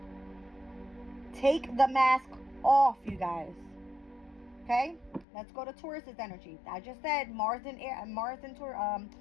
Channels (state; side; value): drops out; right; at 5.2 s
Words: Take the mask off, you guys. Okay? Let's go to Taurus's energy. I just said Mars and